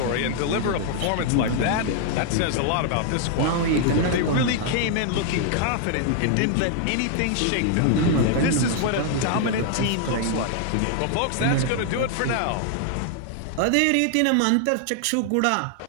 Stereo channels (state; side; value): different; both; correlation 0.00